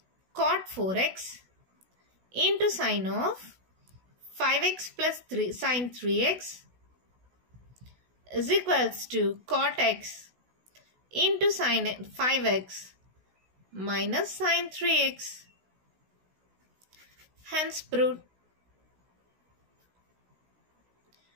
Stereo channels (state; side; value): late; left; 16 ms